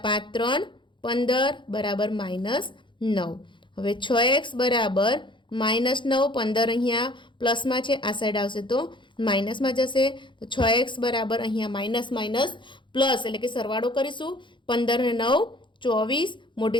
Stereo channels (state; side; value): late; right; 0.23 ms